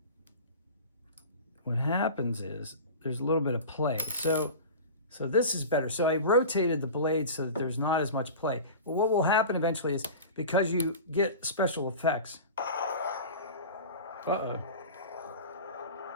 What happens is there's a little bit of play. So this is better. So I rotated the blade so that there's not as much play. But what will happen eventually is because you get special effects. Uh-oh.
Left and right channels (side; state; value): both; inverted; correlation -0.34